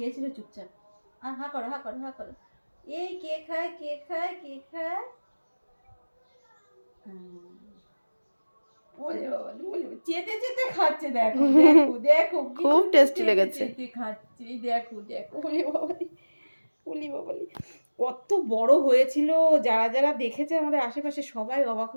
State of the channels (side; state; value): both; inverted; correlation -1.00